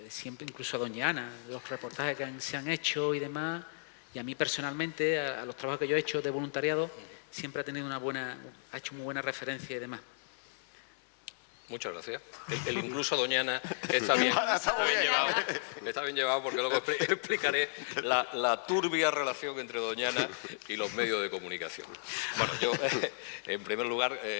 siempre, incluso a doña Ana, los reportajes que se han hecho y demás, y a mí personalmente, a los trabajos que yo he hecho de voluntariado, siempre ha tenido ha hecho muy buena referencia y demás. Muchas gracias. El incluso a doña Ana está bien llevado porque luego explicaré la turbia relación entre doña Ana y los medios de comunicación. Bueno, yo, en primer lugar,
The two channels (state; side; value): silent; right; 55 dB below the other